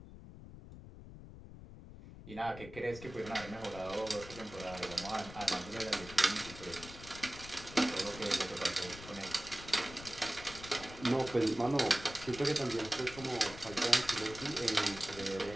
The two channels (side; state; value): left; noise; rumble, 14 dB below the sound